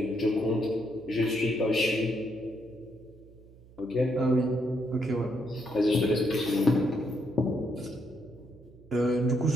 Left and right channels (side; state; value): right; noise; hum, 23 dB below the sound